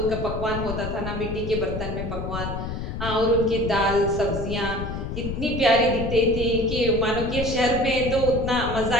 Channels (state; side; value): noise; left; rumble, 5 dB below the sound